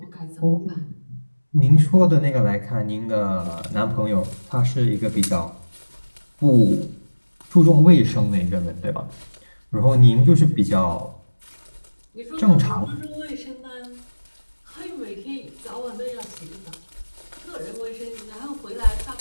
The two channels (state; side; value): inverted; both; correlation -1.00